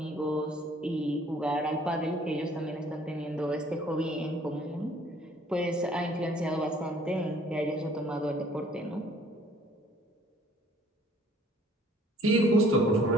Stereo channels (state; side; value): normal; both; correlation 0.57